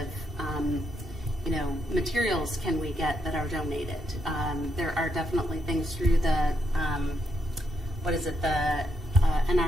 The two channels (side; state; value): both; normal; correlation 0.79